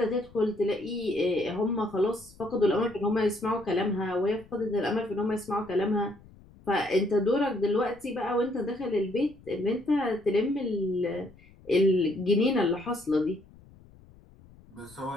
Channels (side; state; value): left; noise; rumble, 24 dB below the sound